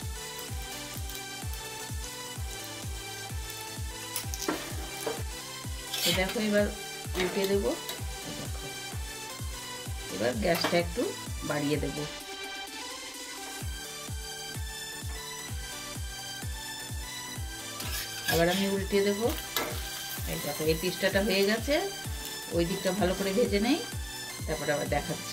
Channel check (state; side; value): identical; both; correlation 1.00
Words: দেখো এবার উল্টে দেব। দেখো এবার গ্যাসটা একটু বাড়িয়ে দেব। আবার আমি উল্টে দেব। এই দেখো এই পিসটাটা হয়ে গেছে, ওই দিকটা ভালো করে ভেজে নেই, তারপরে আবার